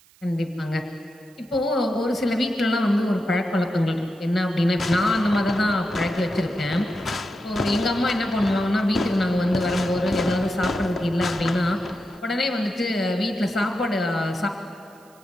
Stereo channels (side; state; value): right; noise; hiss, 29 dB below the sound